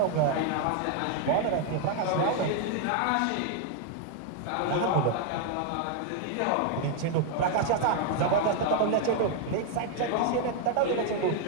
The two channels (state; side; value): different; both; correlation 0.00